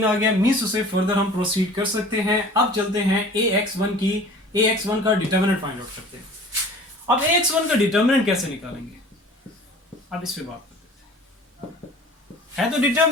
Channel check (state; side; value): normal; both; correlation 0.44